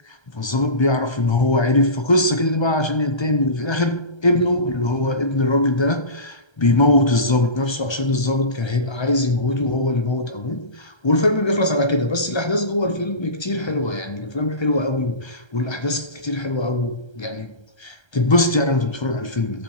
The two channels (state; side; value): late; right; 1.3 ms